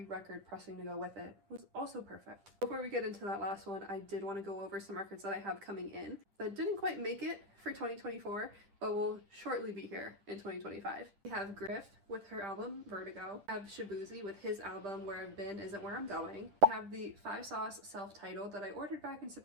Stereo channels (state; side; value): late; left; 10 ms